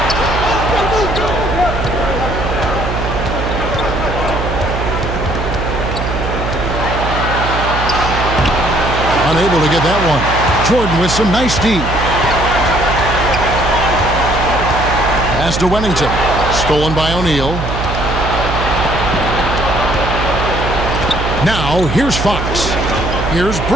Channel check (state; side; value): noise; right; hum, 4 dB below the sound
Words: Unable to get that one. Jordan with some nice D. Pass to Wennington. Stolen by O'Neal. Now, here's Fox. Here's